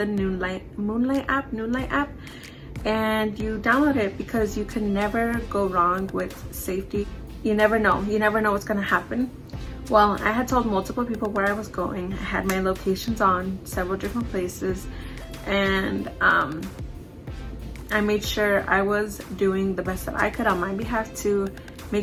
Noonlight app, and you download it, because you can never go wrong with safety. You never know what's gonna happen. Well, I had told multiple people where I was going. I had my locations on several different places, and I made sure I was doing the best that I could on my behalf to make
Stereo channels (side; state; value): both; identical; correlation 1.00